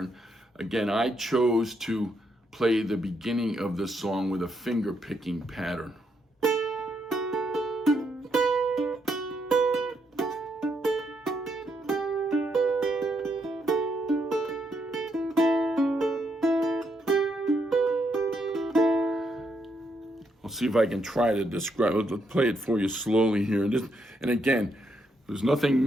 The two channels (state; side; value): normal; both; correlation 0.77